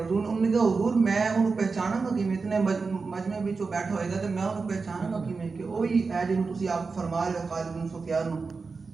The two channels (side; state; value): left; quieter; 4.5 dB